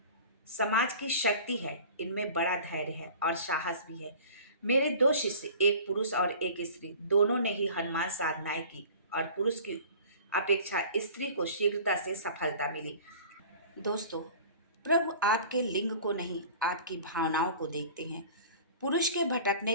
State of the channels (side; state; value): both; inverted; correlation -0.43